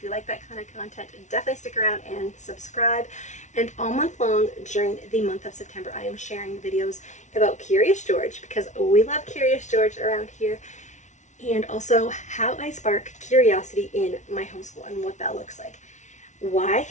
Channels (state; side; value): late; right; 0.35 ms